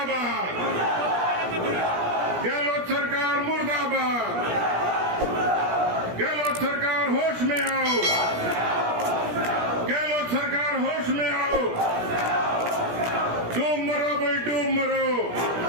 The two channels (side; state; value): left; late; 17 ms